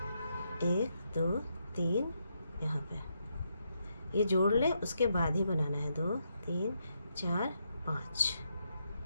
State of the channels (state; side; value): inverted; both; correlation -0.80